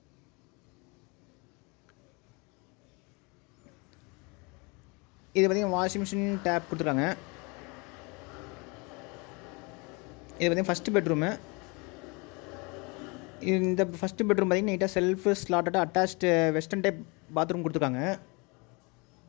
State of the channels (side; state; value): right; quieter; 29.2 dB